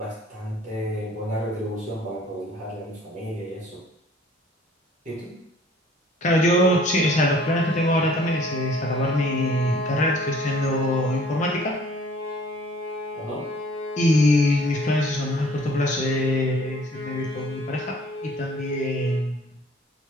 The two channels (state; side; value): normal; both; correlation 0.55